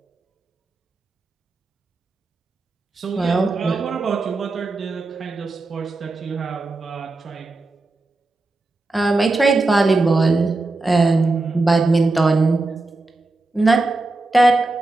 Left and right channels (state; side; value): quieter; left; 3.1 dB